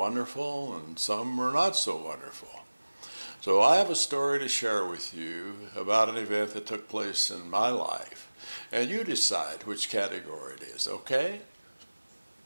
and some were not so wonderful. So I have a story to share with you about an event that took place in my life. And you decide which category it is, okay?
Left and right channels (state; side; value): inverted; both; correlation -1.00